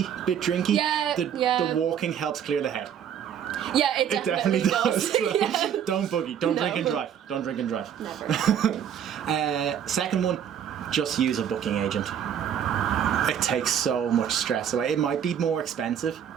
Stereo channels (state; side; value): quieter; left; 8.9 dB